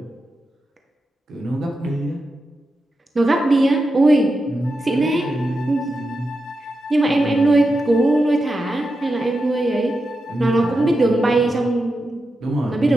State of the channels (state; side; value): normal; both; correlation 0.89